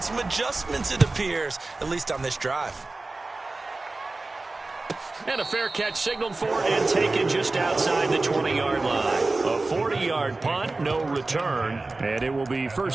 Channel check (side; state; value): left; quieter; 3.3 dB